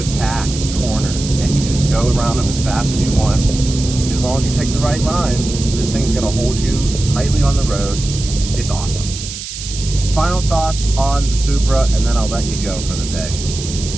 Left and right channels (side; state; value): right; noise; hiss, 9 dB below the sound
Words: corners, and you can just go around them as fast as you want. As long as you take the right line, this thing's gonna hold you tightly on the road. It's awesome. Final thoughts on the Supra, and then I'll let you go for the day.